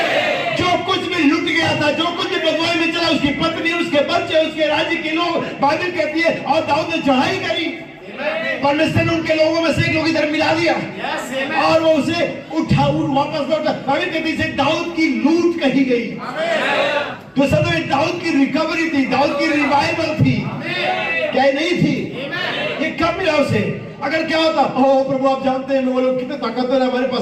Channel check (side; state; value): both; identical; correlation 1.00